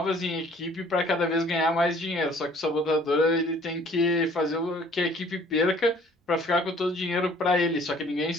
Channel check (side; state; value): both; normal; correlation 0.55